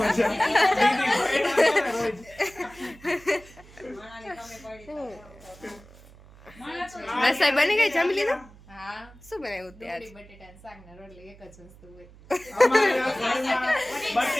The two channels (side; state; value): right; noise; hum, 22 dB below the sound